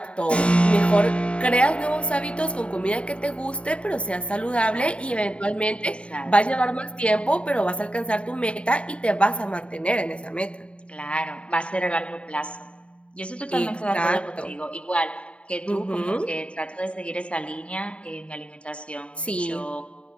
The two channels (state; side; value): late; right; 0.059 ms